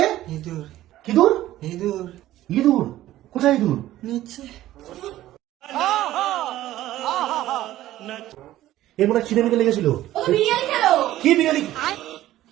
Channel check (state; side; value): quieter; left; 14.4 dB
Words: ইঁদুর কি দূর? ইঁদুর ইঁদুর? কোথায় ইঁদুর? নিচে। এর মনে খিদে মিদে লেগেছিল। বিরিয়ানি খেলো। কি বিরিয়ানি?